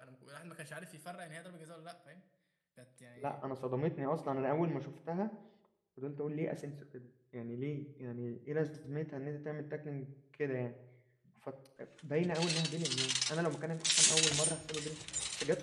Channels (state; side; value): identical; both; correlation 1.00